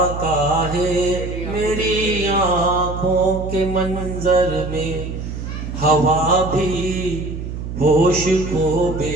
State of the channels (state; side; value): noise; right; hum, 7 dB below the sound